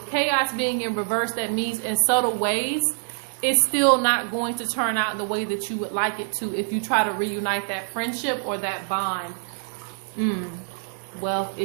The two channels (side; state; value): left; silent; digital silence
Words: chaos being in reverse, that means in subtle ways, it's still not going to turn out the way that you would like it to if you try to reunite that friendship or that bond. Wealth,